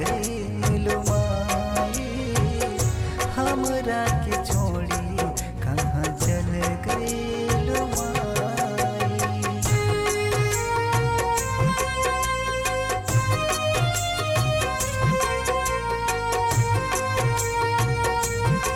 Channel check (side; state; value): both; identical; correlation 1.00